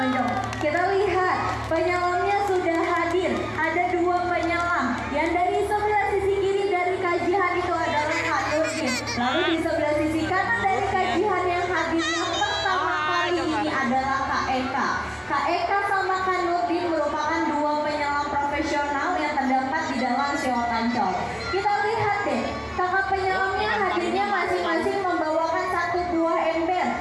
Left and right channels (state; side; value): identical; both; correlation 1.00